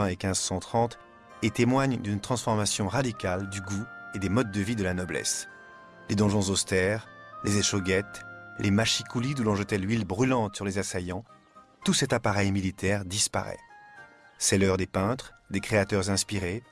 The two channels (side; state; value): both; identical; correlation 1.00